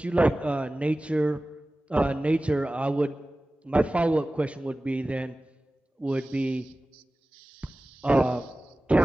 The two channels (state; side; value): normal; both; correlation 0.97